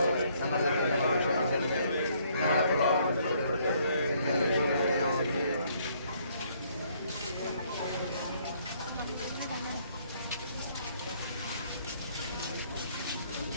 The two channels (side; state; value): both; inverted; correlation -0.66